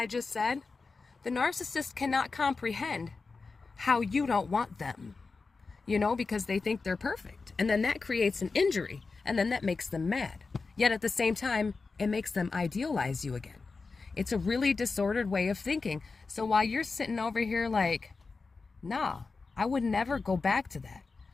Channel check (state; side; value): quieter; right; 4.2 dB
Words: just said, the narcissist cannot comprehend how you don't want them, because they think they're perfect. And then that creates an injury, and then that makes them mad. Yet at the same time, it makes them idealize you again. It's a really disordered way of thinking. So while you're sitting over here like, nah, I would never go back to that.